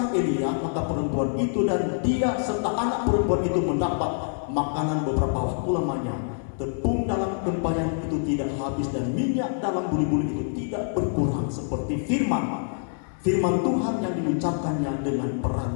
Elia. Maka perempuan itu dan dia serta anak perempuan itu mendapat makanan beberapa waktu lamanya. Tepung dalam tempayan itu tidak habis, dan minyak dalam buli-buli itu tidak berkurang, seperti firman Tuhan yang diucapkannya dengan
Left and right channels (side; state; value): right; silent; digital silence